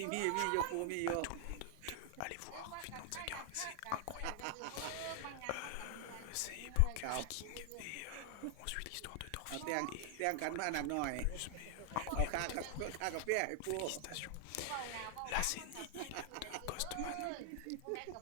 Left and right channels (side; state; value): both; different; correlation 0.00